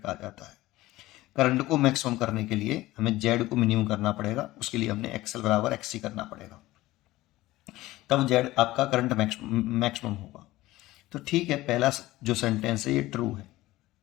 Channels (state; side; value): quieter; right; 17.4 dB